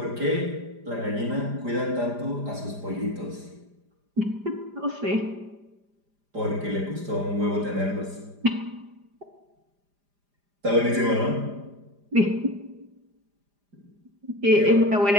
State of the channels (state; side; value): late; left; 5.0 ms